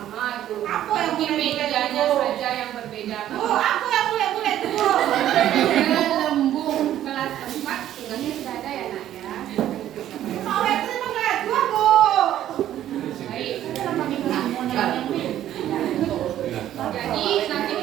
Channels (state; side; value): quieter; left; 12.0 dB